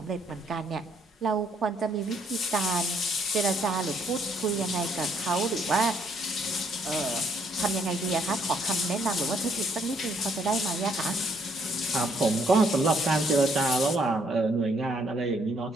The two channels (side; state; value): both; normal; correlation 0.68